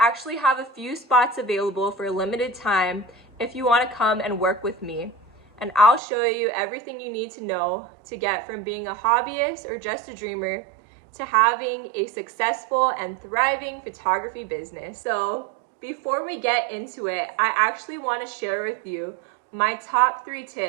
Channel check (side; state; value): left; drops out; at 6.0 s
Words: have a few spots available for a limited time if you want to come and work with me. And I'll show you everything you need to know to get from being a hobbyist or just a dreamer to having a successful and thriving photography business. So before we get into it, I actually want to share with you my top 3